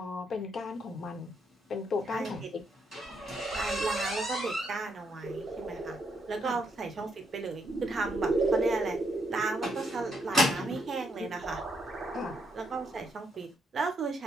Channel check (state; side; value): normal; both; correlation 0.77